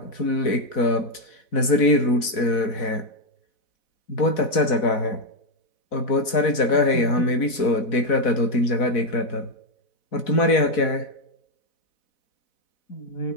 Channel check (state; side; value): late; right; 4.0 ms